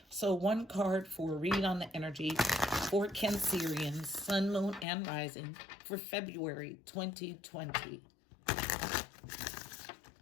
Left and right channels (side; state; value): right; drops out; at 4.9 s